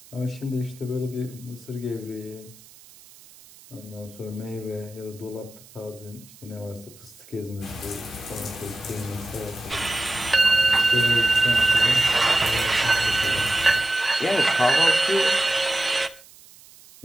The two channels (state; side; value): noise; right; hiss, 23 dB below the sound